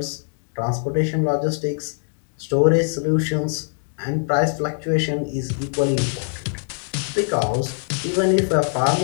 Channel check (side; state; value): right; silent; digital silence